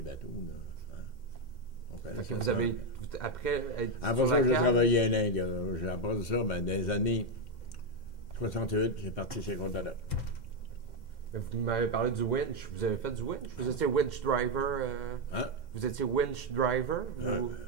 bateaux. Là, hein? Fait que vous avez, après être après sur ça, la j'ai Cal, travaillé à l'Inde. J'ai appris ça, mais dans les années 68, j'ai parti chez Contador. vous m'avez parlé du winch. Vous avez fait du winch? Vous étiez winch driver? Hein? Vous étiez winch driver?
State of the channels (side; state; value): right; late; 2.1 ms